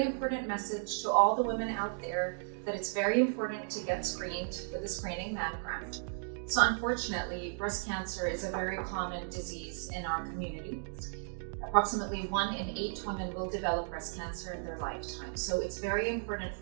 important message to all the women out there that it's very important to get screened with a screening mammogram. So unfortunately, breast cancer is a very common disease in our community. Approximately 1 in 8 women will develop breast cancer in their lifetime. So it's very important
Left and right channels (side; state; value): left; silent; digital silence